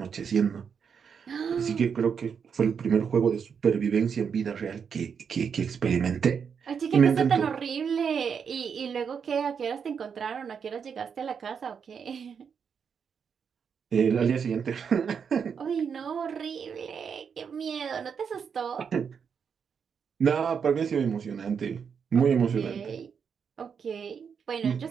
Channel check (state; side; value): quieter; left; 6.7 dB